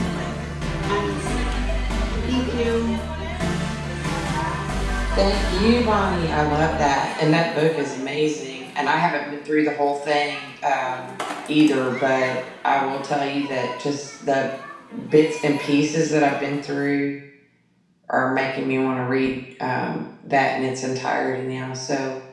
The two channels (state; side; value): identical; both; correlation 1.00